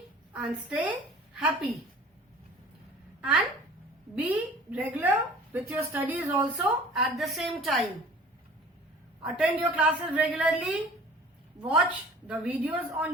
and stay happy. And be regular with your studies also at the same time. Attend your classes regularly, watch the videos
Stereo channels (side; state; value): both; normal; correlation 0.46